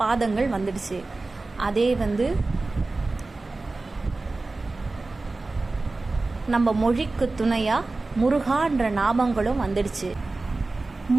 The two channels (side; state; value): left; quieter; 3.4 dB